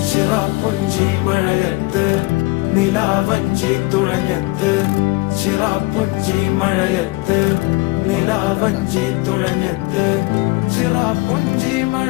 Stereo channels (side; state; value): right; quieter; 22.6 dB